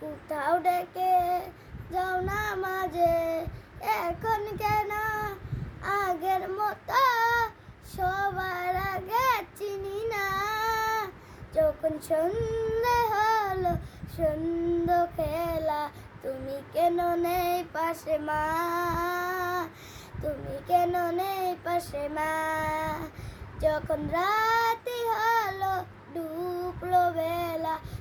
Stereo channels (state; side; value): identical; both; correlation 1.00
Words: ডেকে যাও না মাঝে, এখন কেন আগের মতো সবার আগে চিনি না। যখন সন্ধে হলো সন্ধ্যা খেলা, তুমি কেন নেই পাশে মা, তুমি কেন নেই পাশে মা। যখন রাতি হলো ডুবলো বেলা,